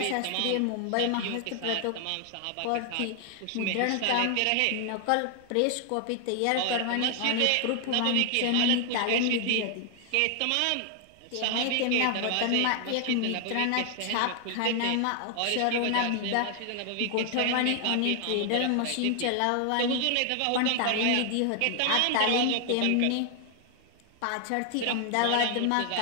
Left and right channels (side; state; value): both; different; correlation 0.00